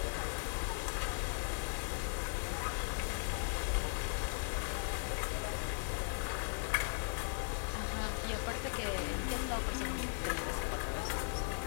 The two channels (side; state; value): right; silent; 52 dB below the other